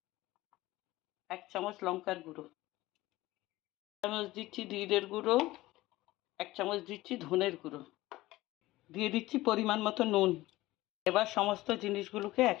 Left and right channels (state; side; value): quieter; right; 17.9 dB